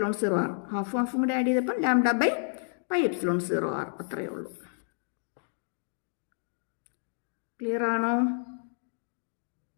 ഹാഫും കൂടി ആഡ് ചെയ്തപ്പോൾ λ/πε0R. അത്രയേ ഉള്ളൂ. ക്ലിയർ ആണോ?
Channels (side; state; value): right; silent; digital silence